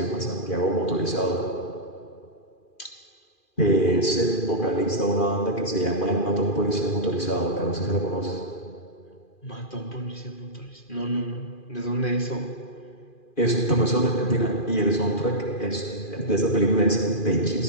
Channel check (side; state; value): right; late; 2.4 ms